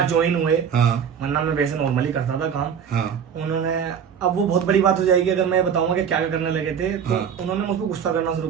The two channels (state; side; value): quieter; left; 7.6 dB